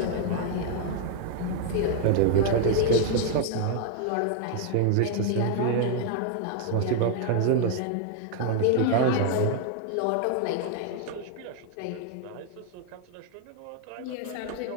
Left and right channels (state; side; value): different; both; correlation 0.00